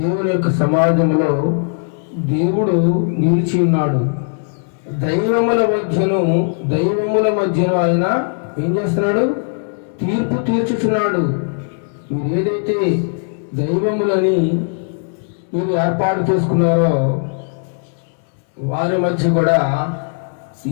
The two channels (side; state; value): right; silent; 67 dB below the other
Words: యొక్క సమాజంలో దేవుడు నిలిచి ఉన్నాడు. దైవముల మధ్యను ఆయన ఏం చేస్తున్నాడు? తీర్పు తీర్చుచున్నాడు. మీరు ఏదైతే దైవములని మీరు ఏర్పాటు చేసుకున్నారో వారి మధ్య కూడా